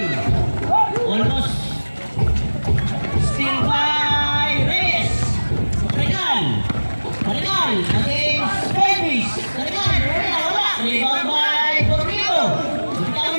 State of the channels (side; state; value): both; inverted; correlation -1.00